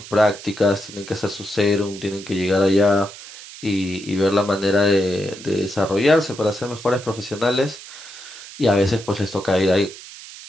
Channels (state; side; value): noise; right; hiss, 15 dB below the sound